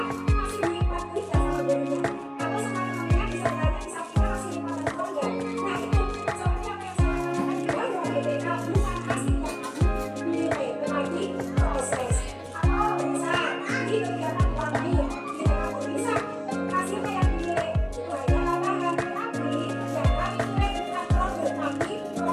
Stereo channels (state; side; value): identical; both; correlation 1.00